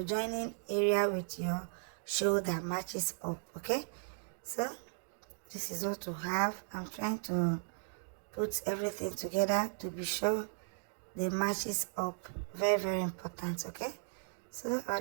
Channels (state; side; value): silent; left; digital silence